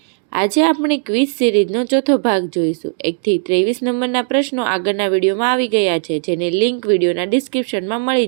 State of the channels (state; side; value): silent; left; digital silence